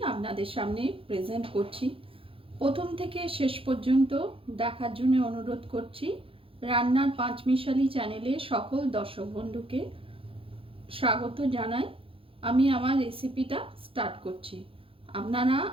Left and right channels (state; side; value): late; left; 0.27 ms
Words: আপনাদের সামনে প্রেজেন্ট করছি। প্রথম থেকে শেষ পর্যন্ত দেখার জন্য অনুরোধ করছি। রান্নার পাঁচমিশালি চ্যানেলে সকল দর্শক বন্ধুকে স্বাগত জানাই। আমি আমার রেসিপিটা স্টার্ট করছি, আপনারা